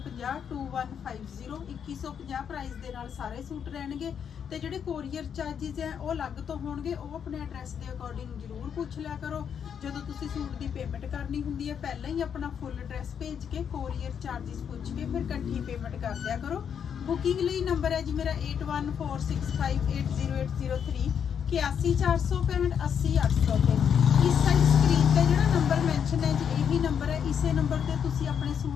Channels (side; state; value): right; quieter; 7.8 dB